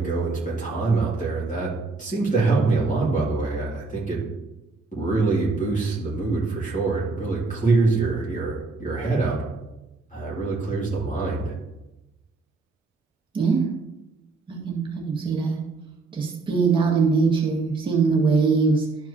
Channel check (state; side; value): quieter; left; 3.8 dB